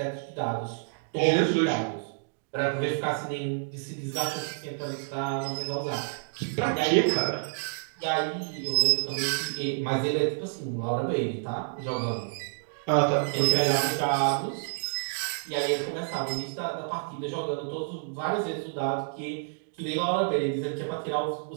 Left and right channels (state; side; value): silent; left; digital silence